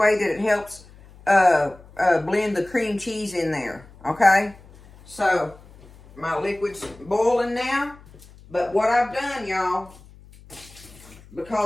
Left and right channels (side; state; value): left; noise; hum, 23 dB below the sound